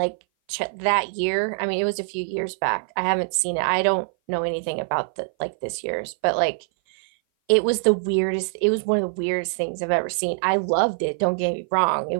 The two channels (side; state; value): left; silent; 58 dB below the other